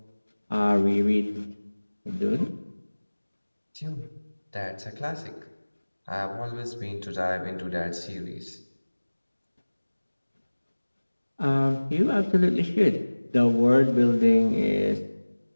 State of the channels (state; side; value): inverted; both; correlation -1.00